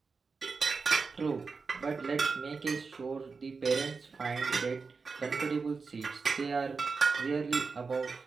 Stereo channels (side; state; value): left; quieter; 4.7 dB